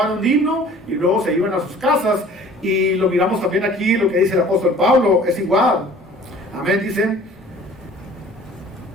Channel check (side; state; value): both; normal; correlation 0.49